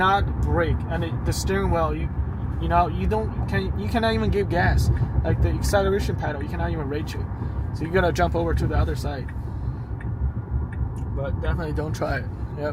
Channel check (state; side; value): identical; both; correlation 1.00